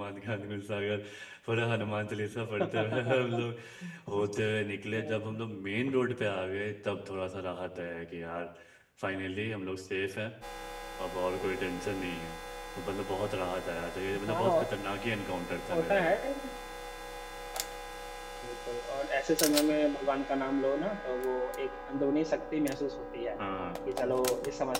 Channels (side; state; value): both; identical; correlation 1.00